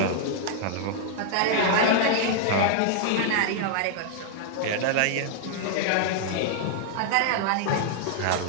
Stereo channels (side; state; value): both; different; correlation -0.01